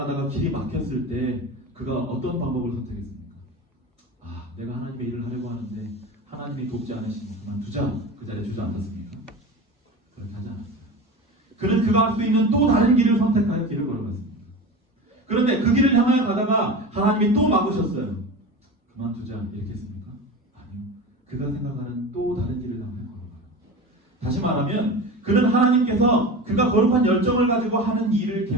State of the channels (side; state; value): both; normal; correlation 0.29